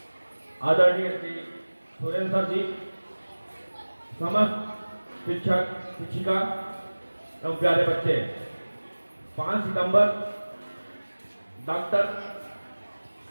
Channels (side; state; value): both; inverted; correlation -1.00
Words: आदरणीय श्री सुरेंद्र सर जी, समस्त शिक्षक शिक्षिका एवं प्यारे बच्चे, 5 सितंबर डॉक्टर